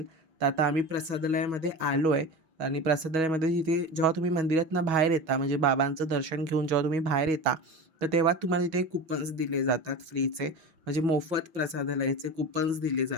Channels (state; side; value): late; left; 6.3 ms